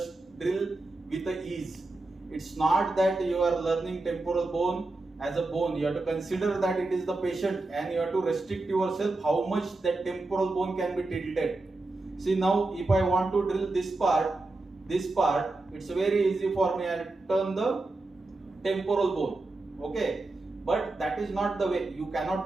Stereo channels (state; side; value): quieter; left; 3.1 dB